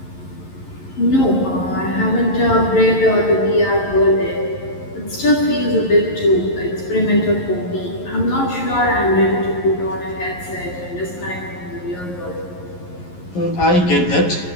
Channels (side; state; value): right; late; 11 ms